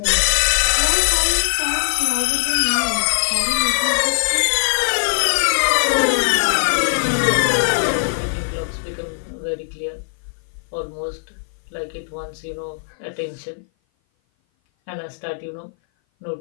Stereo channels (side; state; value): right; silent; 57 dB below the other